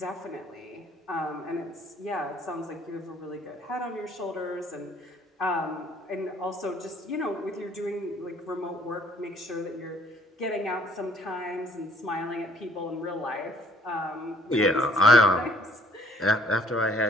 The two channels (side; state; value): both; normal; correlation 0.60